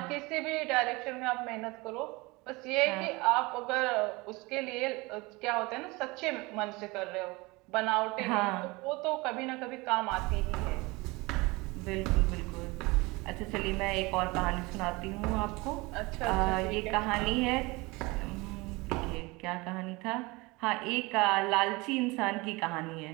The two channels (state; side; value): quieter; left; 24.0 dB